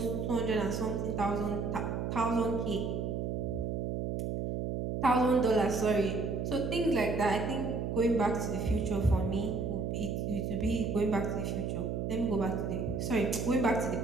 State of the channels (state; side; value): noise; right; hum, 2 dB below the sound